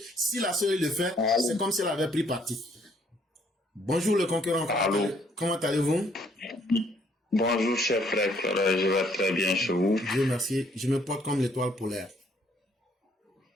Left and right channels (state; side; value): normal; both; correlation 0.66